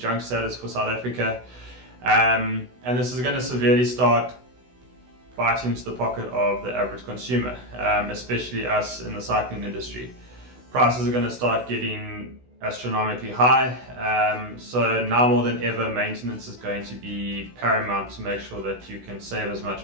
status for South Africa. And this is going to severely start biting into the pocket of the average consumer, especially us in the cycling industry. Prices are going to start getting astronomically high, so now more than ever maintenance is going to be paramount to make sure that you can save as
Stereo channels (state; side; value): late; left; 16 ms